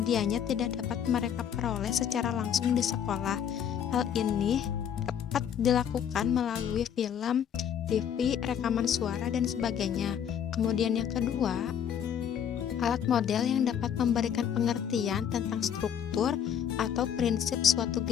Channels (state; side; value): quieter; right; 8.7 dB